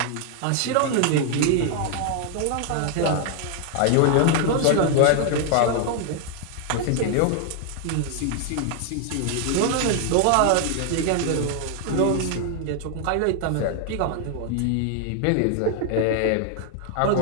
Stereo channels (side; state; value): both; different; correlation 0.00